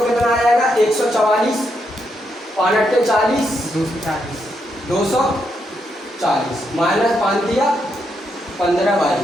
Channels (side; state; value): both; normal; correlation 0.80